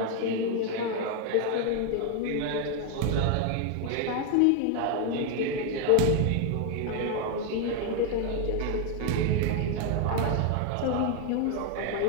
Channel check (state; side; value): different; both; correlation 0.01